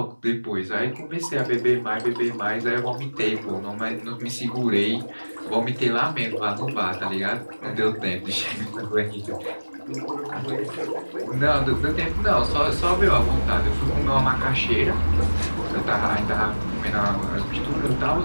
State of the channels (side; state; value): both; inverted; correlation -1.00